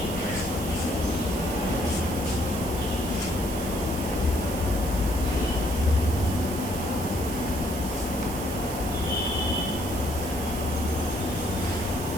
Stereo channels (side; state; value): right; noise; hiss, 10 dB below the sound